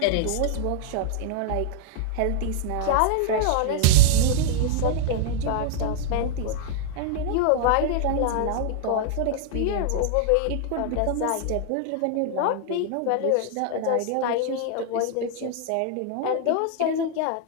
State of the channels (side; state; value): both; different; correlation -0.01